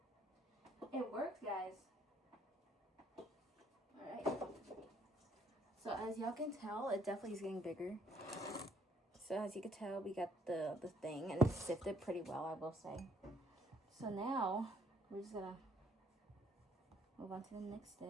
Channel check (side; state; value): both; normal; correlation 0.66